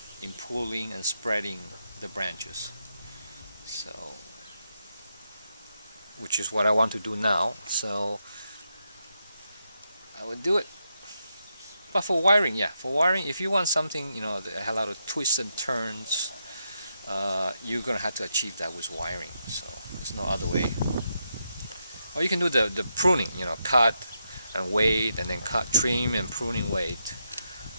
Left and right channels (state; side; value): inverted; both; correlation -0.83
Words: in pulling and spreading the branches, so which is what I want to do now. So I would do it. But for wiring, if you want something that has a lot of twists and turns, you're gonna have to achieve that with wiring. So there's no other way. Or you can do the pruning, cut and wait, and then cut, trim, and pruning, wait.